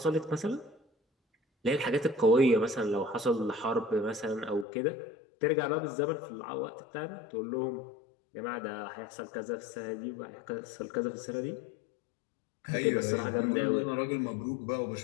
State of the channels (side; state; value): right; drops out; at 4.7 s